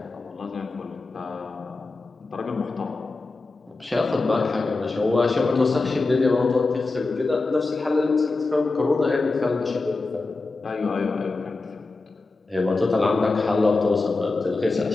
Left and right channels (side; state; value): right; quieter; 3.6 dB